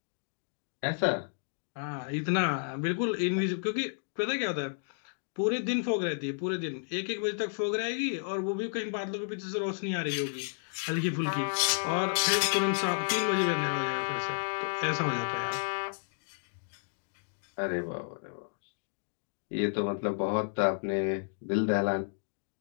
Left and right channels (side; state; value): right; silent; digital silence